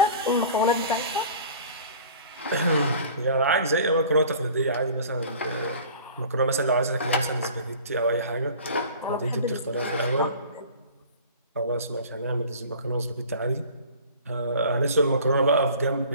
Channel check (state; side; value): inverted; both; correlation -0.44